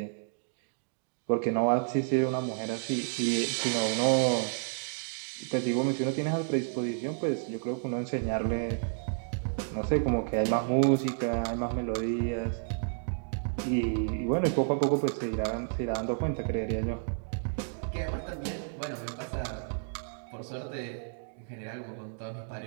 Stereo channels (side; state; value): left; silent; digital silence